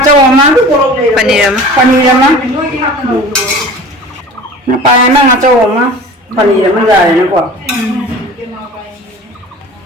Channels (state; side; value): normal; both; correlation 0.40